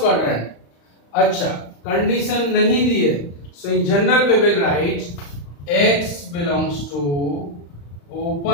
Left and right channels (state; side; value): late; right; 35 ms